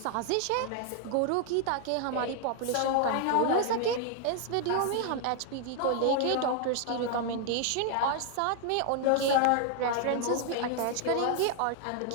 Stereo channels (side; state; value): both; different; correlation 0.00